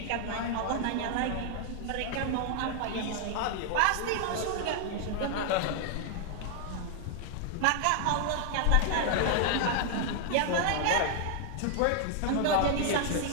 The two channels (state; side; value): different; both; correlation 0.00